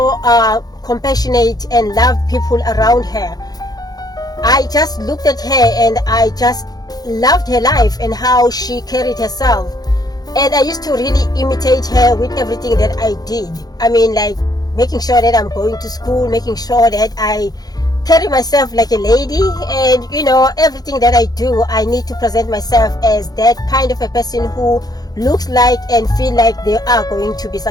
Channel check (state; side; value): late; right; 0.19 ms